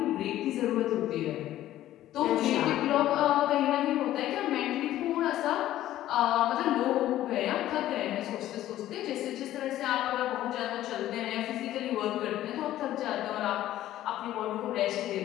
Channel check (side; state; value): right; quieter; 13.6 dB